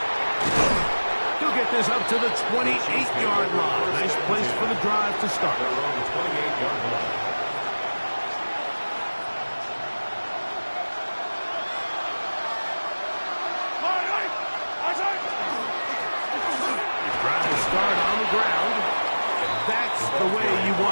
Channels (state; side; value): inverted; both; correlation -1.00